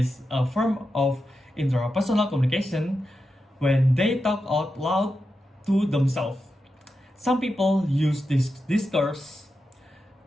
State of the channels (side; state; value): both; normal; correlation 0.89